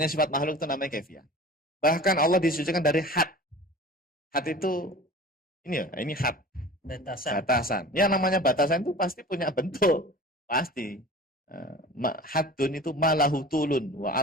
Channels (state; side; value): normal; both; correlation 0.40